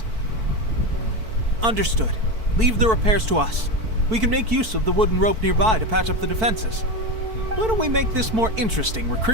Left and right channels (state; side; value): late; left; 4.5 ms